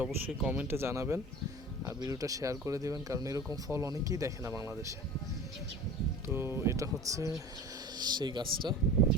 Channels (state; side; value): normal; both; correlation 0.38